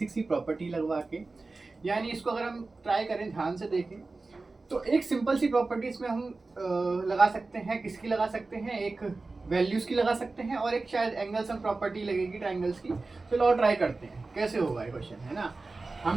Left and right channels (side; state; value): left; quieter; 3.6 dB